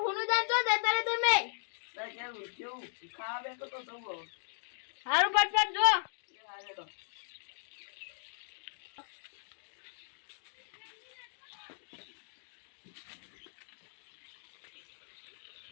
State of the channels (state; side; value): silent; right; digital silence